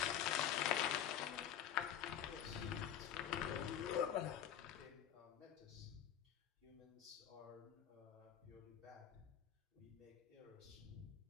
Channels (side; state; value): right; quieter; 9.9 dB